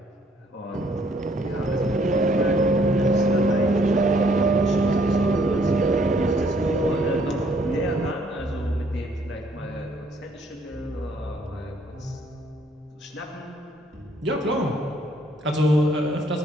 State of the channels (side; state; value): both; normal; correlation 0.65